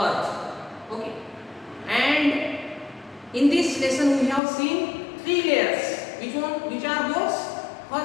Okay, and in this lesson we have seen three layers. Which are those?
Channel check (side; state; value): right; drops out; at 4.4 s